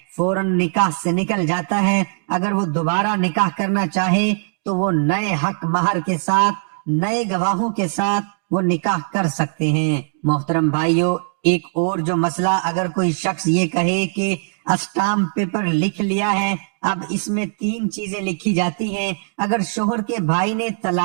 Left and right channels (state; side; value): silent; left; 66 dB below the other